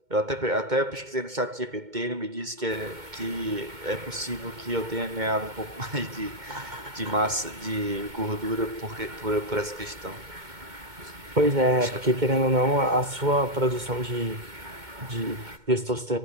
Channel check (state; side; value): late; left; 2.2 ms